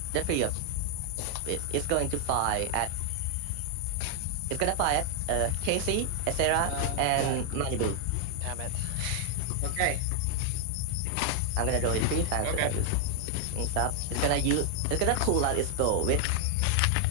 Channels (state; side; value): different; both; correlation 0.00